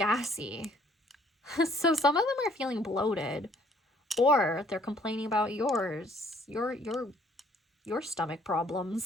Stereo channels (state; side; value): normal; both; correlation 0.61